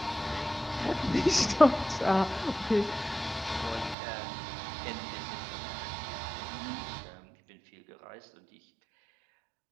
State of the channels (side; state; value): left; drops out; at 4.0 s